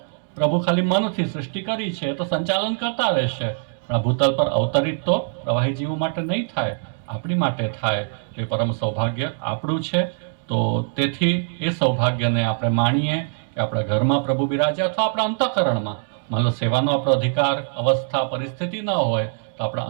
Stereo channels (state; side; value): silent; left; digital silence